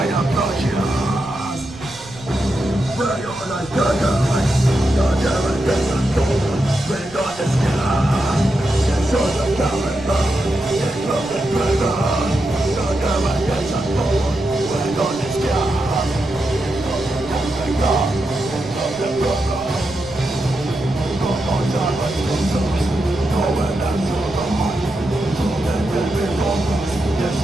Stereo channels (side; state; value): right; noise; rumble, 20 dB below the sound